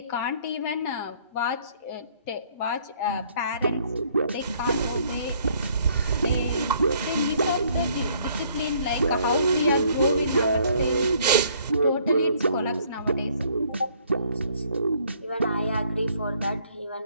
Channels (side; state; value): both; inverted; correlation -0.63